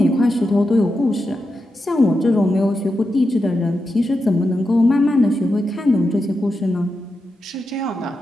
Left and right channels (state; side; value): normal; both; correlation 0.88